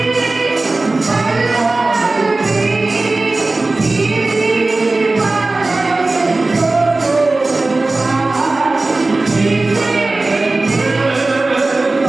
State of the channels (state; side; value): quieter; left; 3.2 dB